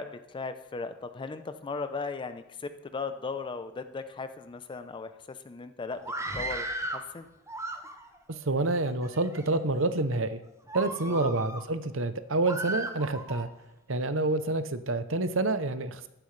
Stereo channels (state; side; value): normal; both; correlation 0.00